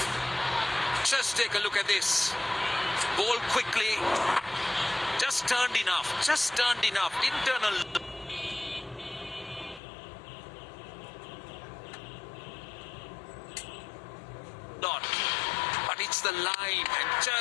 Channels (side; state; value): right; drops out; at 9.8 s